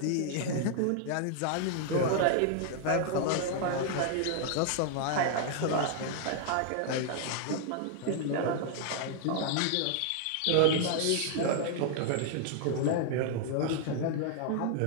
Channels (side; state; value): both; different; correlation 0.00